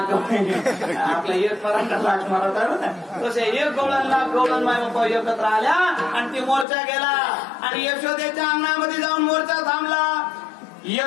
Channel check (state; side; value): drops out; right; at 6.7 s